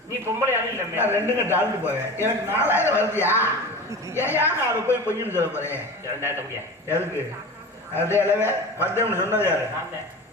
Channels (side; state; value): both; normal; correlation 0.32